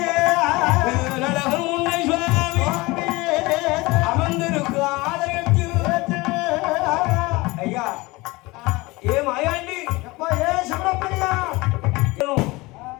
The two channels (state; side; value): quieter; right; 22.5 dB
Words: நடகம் உன்னை சுவாமி அமர்ந்திருக்கு ஆலயத்தில். ஐயா ஏ மாயாண்டி ஏ சிவப்பிரியா,